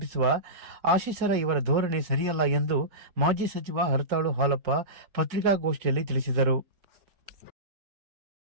ಆಶೀಸರ ಇವರ ಧೋರಣೆ ಸರಿಯಲ್ಲ ಎಂದು ಮಾಜಿ ಸಚಿವ ಹರತಾಳು ಹಾಲಪ್ಪ ಪತ್ರಿಕಾಗೋಷ್ಠಿಯಲ್ಲಿ ತಿಳಿಸಿದರು.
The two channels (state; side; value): late; left; 4.4 ms